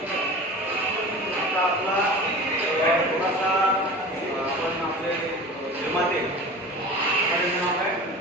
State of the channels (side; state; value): both; normal; correlation 0.36